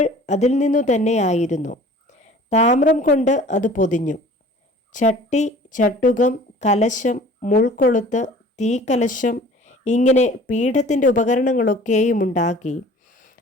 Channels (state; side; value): normal; both; correlation 0.47